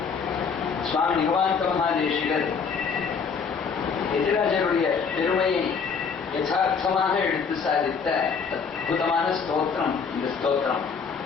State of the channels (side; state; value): right; quieter; 5.8 dB